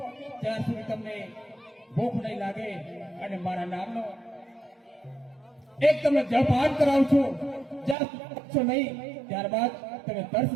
ત્યાર સુધી તમને ભૂખ નહીં લાગે. અને મારા નામનો એક તમને જળપાન કરાવું છું, જ્યાં સુધી પહોંચો નહીં ત્યારબાદ તમે તરસ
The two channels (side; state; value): left; drops out; at 8.0 s